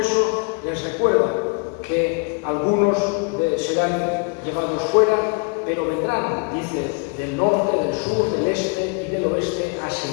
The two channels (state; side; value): quieter; right; 34.6 dB